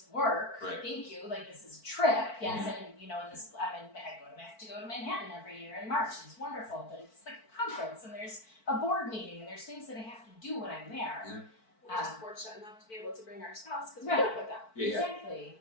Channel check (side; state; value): right; late; 4.5 ms